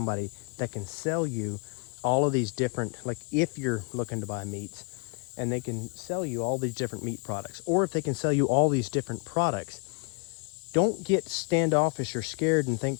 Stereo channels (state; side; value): quieter; right; 33.7 dB